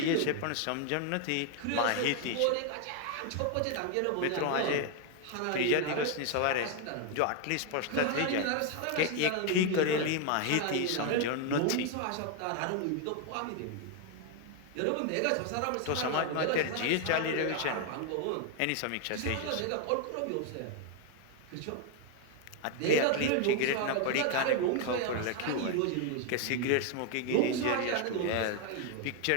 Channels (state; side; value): different; both; correlation 0.01